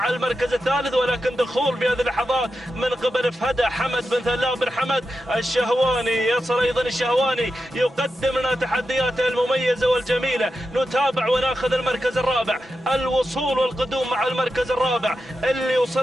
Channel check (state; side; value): normal; both; correlation 0.89